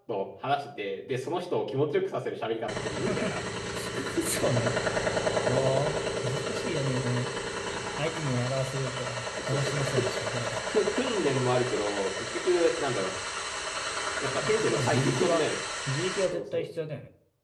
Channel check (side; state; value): both; identical; correlation 1.00